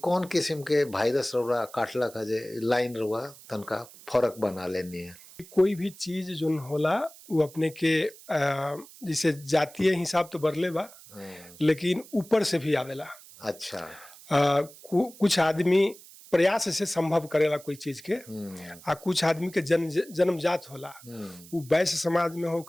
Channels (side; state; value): right; noise; hiss, 20 dB below the sound